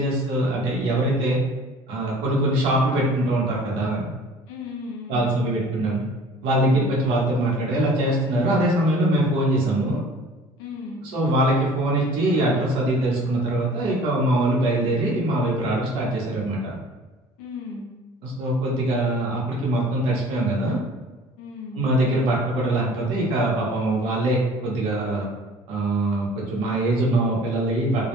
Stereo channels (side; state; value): both; normal; correlation 0.48